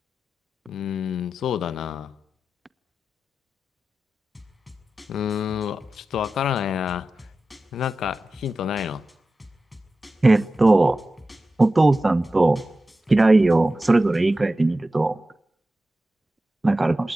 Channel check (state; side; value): normal; both; correlation 0.94